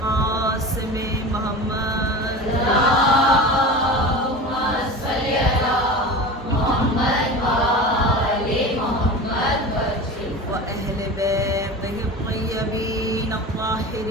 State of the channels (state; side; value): normal; both; correlation 0.31